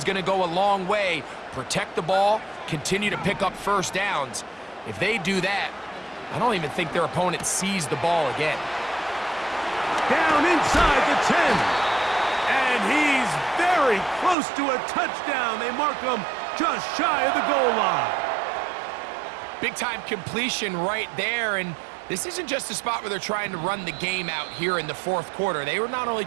going to go a long way. Protect the ball, continue to pick up first downs. If they do that, I don't even think their opponent sees the ball again. Down inside the 10. And he's very close to a touchdown. They mark him just shy of the goal line. Big-time completion right there, and this isn't just a spot where they're trying to run the game out here in the fourth quarter. They were not only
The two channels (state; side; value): drops out; left; at 14.4 s